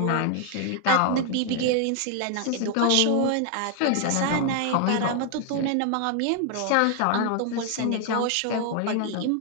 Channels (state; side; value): different; both; correlation 0.00